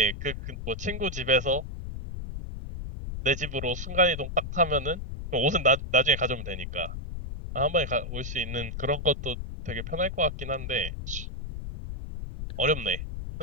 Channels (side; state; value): left; noise; rumble, 7 dB below the sound